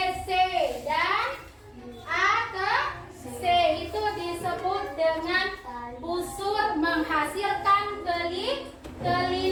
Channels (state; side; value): identical; both; correlation 1.00